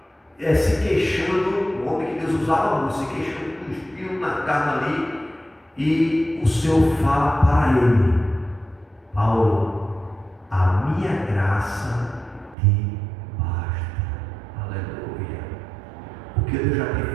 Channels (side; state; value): left; drops out; at 12.6 s